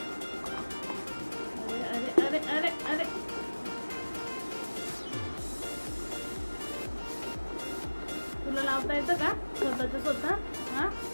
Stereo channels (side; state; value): both; inverted; correlation -1.00